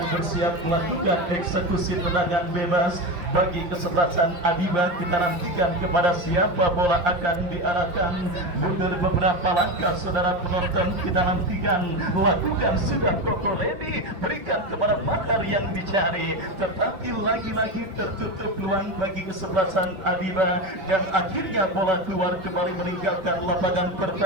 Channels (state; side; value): late; left; 5.5 ms